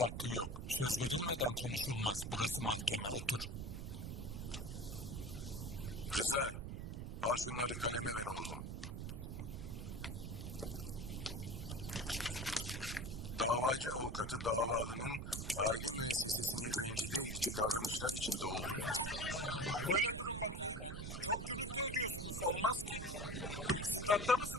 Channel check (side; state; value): right; noise; rumble, 5 dB below the sound